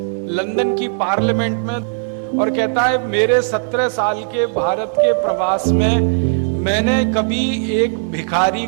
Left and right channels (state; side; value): silent; left; digital silence